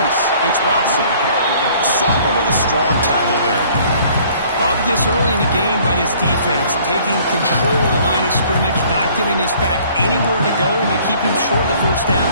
It's Watson. Sopper with a strong tackle there. Love this early in the game by this defense. Taking control of the line of scrimmage, not giving this back anywhere to go, and they keep him short of the first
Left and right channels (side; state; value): both; inverted; correlation -0.56